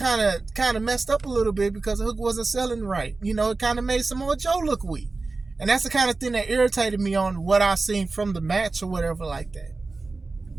of messed up a little bit because Hook wasn't selling right. You know, it kind of made Samoa Joe look weak. And that's the kind of thing that irritated me on what I seen from the match or whatever like that.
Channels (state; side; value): quieter; left; 3.7 dB